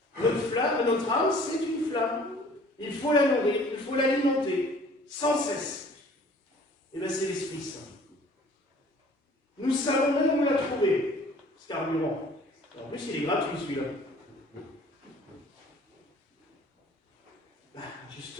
Notre flamme, notre âme, c'est une flamme. Il faut la nourrir, il faut l'alimenter, sans cesse. Et bien c'est l'Esprit Saint. Nous savons même où la trouver, ce carburant. En plus, il est gratuit celui-là. Ben,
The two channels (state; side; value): normal; both; correlation 0.52